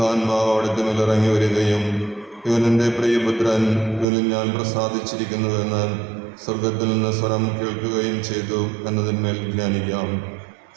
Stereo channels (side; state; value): left; drops out; at 4.0 s